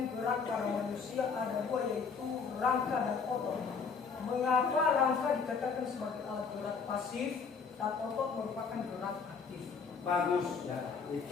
gerak pada manusia ada 2, yaitu rangka dan otot. Mengapa rangka dikatakan sebagai alat gerak pasif dan otot merupakan gerak aktif? Bagus ya,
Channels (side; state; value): right; quieter; 5.6 dB